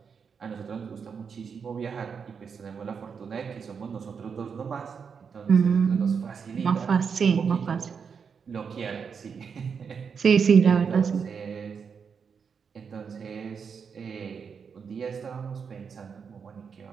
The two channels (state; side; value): quieter; left; 6.3 dB